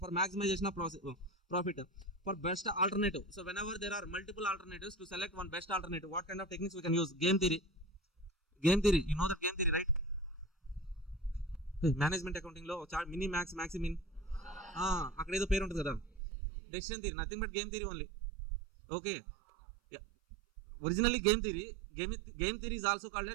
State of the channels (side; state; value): left; drops out; at 16.2 s